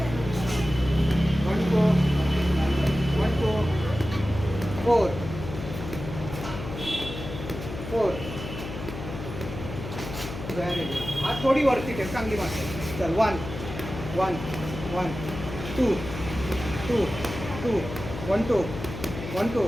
one two one two four four very good. हा थोडी वरती ठेव, चांगली मारते. चल one one one two two two one two one two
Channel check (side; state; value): left; noise; hum, 8 dB below the sound